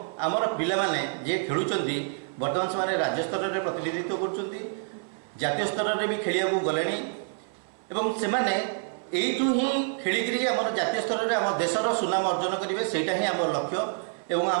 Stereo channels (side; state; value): left; silent; 60 dB below the other